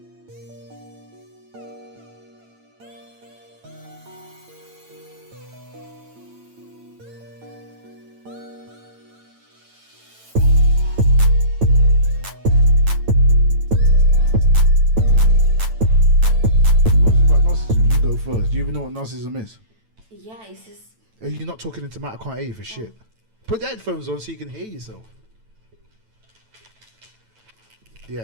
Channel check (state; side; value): late; left; 9.0 ms